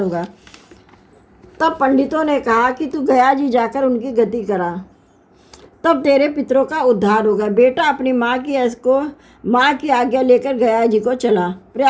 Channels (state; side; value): identical; both; correlation 1.00